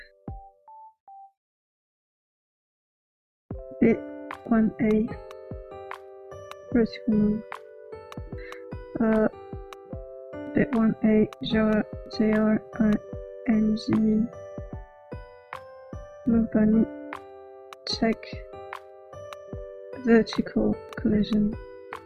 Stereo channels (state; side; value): identical; both; correlation 1.00